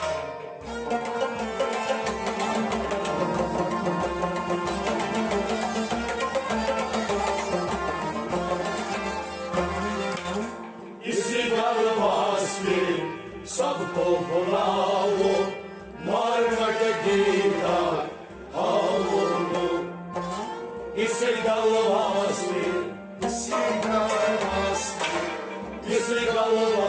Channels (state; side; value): identical; both; correlation 1.00